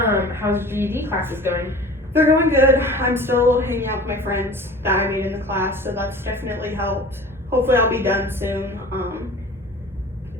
GED classes going? They're going good. I'm still hanging out with my friends that I made in the class, so that's definitely helped. Hopefully I'll be done soon.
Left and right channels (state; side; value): normal; both; correlation 0.41